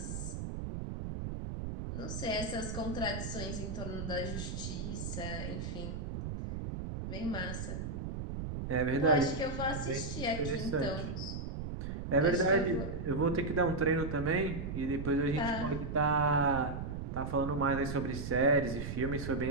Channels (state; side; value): noise; right; rumble, 5 dB below the sound